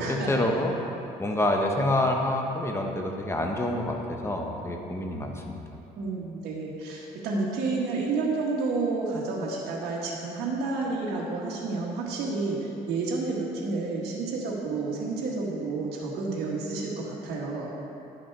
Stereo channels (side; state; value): both; normal; correlation 0.53